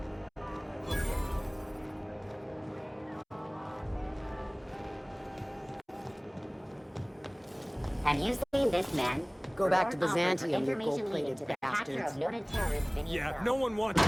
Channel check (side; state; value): both; identical; correlation 1.00